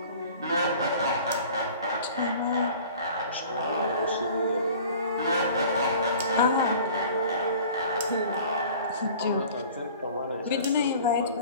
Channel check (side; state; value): both; inverted; correlation -0.46